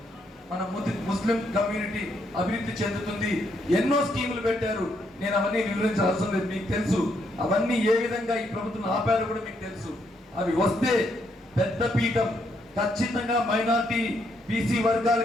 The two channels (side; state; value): both; normal; correlation 0.75